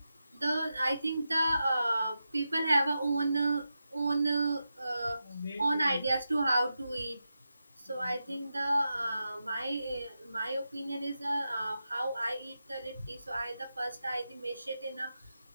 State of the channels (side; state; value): both; inverted; correlation -0.90